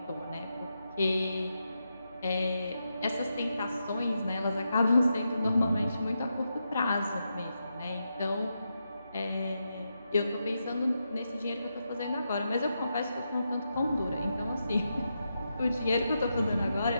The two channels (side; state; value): both; inverted; correlation -0.85